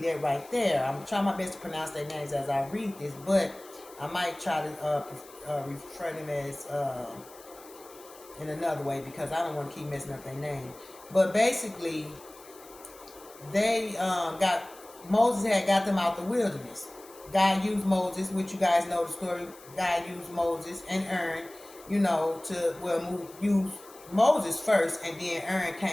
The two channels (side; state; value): left; noise; hiss, 21 dB below the sound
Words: that right there. I'm trying my best to pronounce their names as I read this, but I might try to refer them as in another way, because I don't want to keep messing up their name. But basically, they Moses had got them out the wilderness. God used Moses, which you guys know the story. God used Moses and Aaron, use Moses first, and then Aaron